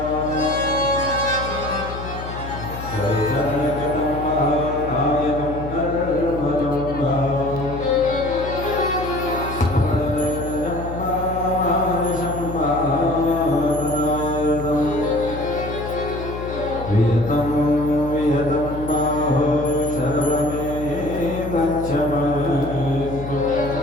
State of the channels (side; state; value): left; noise; hum, 9 dB below the sound